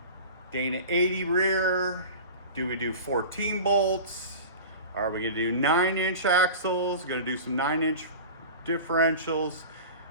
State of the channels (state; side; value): inverted; both; correlation -0.34